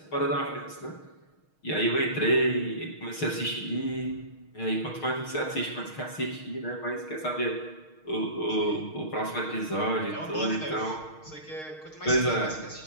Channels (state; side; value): late; right; 6.5 ms